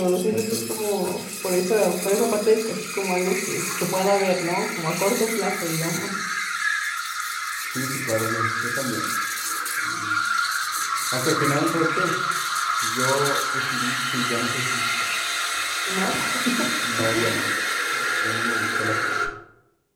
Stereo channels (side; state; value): both; identical; correlation 1.00